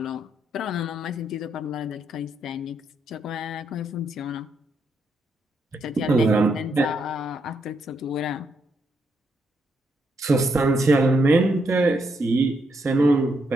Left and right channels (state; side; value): normal; both; correlation 0.78